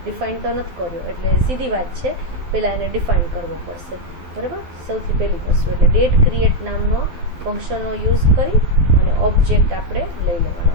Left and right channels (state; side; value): late; left; 12 ms